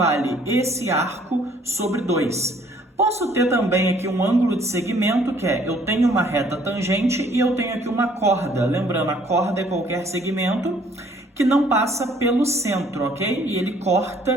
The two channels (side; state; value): both; normal; correlation 0.60